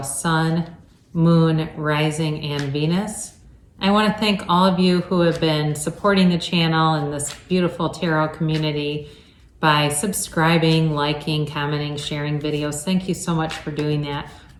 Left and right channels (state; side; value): identical; both; correlation 1.00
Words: Moon, Rising, and Venus. I want to thank all of you who have been supporting the channel and this beautiful tarot community by subscribing, liking, commenting, sharing videos. Thank you so much for doing that.